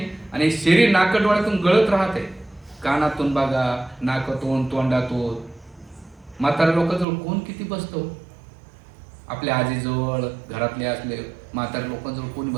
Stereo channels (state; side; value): drops out; left; at 7.1 s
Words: आणि शरीर नाकडोळ्यातून गळत राहते. कानातून बघा, नाकातून, तोंडातून. म्हाताऱ्या लोकांजवळ कोण किती बसतो, आपल्या आजीजवळ, घरातले असले म्हाताऱ्या लोकांजवळ कोणी